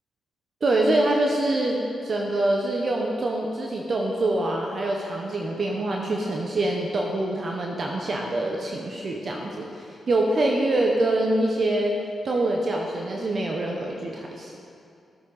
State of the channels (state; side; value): normal; both; correlation 0.86